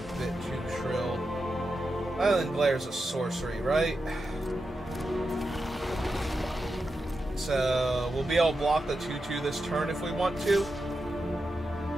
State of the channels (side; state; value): both; normal; correlation 0.89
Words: bit too shrill. Island Glare's a sorcery, right? So, we'll be able to block the 2/2 this turn if we want to.